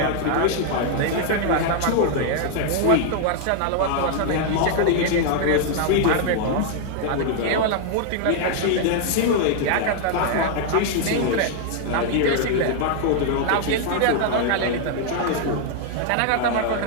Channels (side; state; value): both; different; correlation 0.00